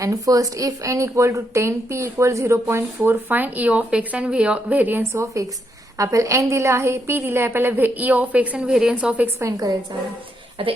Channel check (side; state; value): both; normal; correlation 0.79